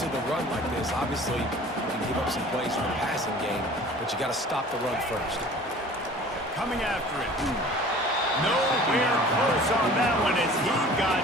to the run like this, obviously you can give up some plays from the passing game, but you got to stop the run first. Coming after it. Nowhere close on that one as he got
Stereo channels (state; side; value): normal; both; correlation 0.45